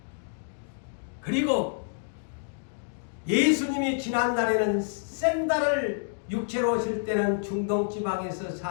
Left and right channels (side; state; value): right; silent; digital silence